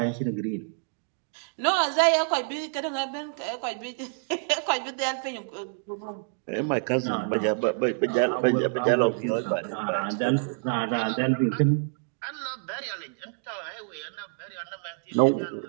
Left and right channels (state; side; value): silent; left; 59 dB below the other